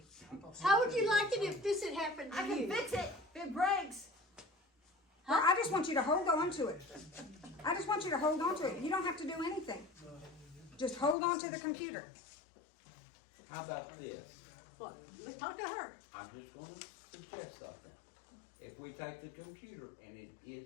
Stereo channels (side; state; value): right; drops out; at 11.2 s